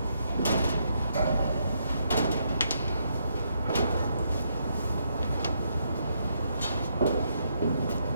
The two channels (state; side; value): inverted; both; correlation -0.76